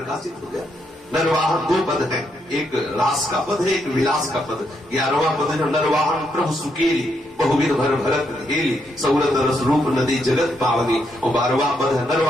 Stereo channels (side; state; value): both; normal; correlation 0.78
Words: हो गया। नरवाहन दो पद है, एक रास का पद है, एक विलास का पद। 11वां पद है नरवाहन प्रभु सुकेली, बहुविध भर भरत हेली, सौरत रस रूप नदी जगत पावनी। और 12वां पद है